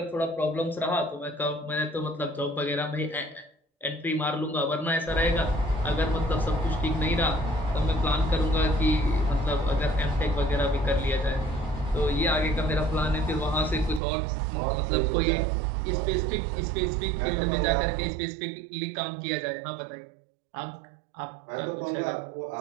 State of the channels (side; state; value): left; drops out; at 14.0 s